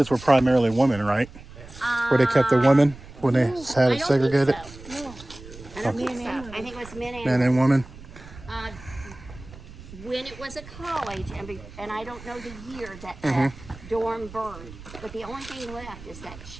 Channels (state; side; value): noise; right; rumble, 17 dB below the sound